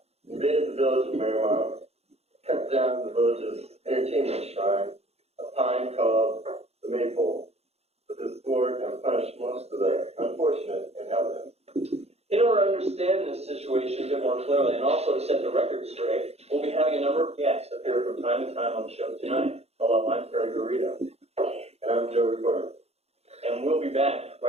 invaded the village of Marymount, cut down the village's entertainment shrine, a pine called the Maypole, with his sword and punished most of the unfortunate inhabitants. In order to understand this situation a bit more clearly, and also to set the record straight, we'll be having a number of guests appear from time to time on the show tonight. Hello, I'm Terry Garrido. And I'm Joe Recorder. And we'll be back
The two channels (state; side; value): late; left; 0.30 ms